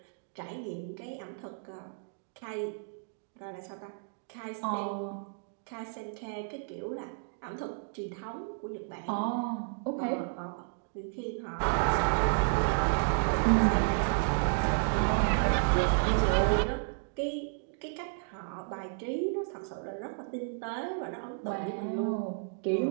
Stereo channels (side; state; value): left; silent; digital silence